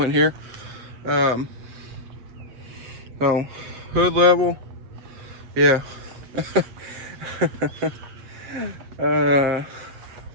here. So hood level, yeah. And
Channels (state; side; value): late; left; 7.6 ms